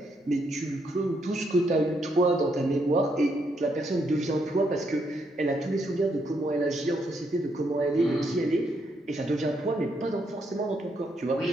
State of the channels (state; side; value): normal; both; correlation 0.76